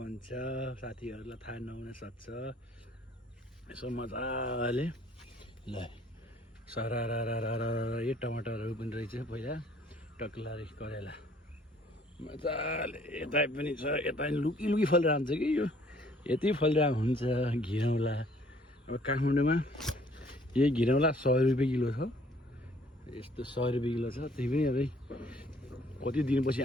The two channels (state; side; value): normal; both; correlation 0.59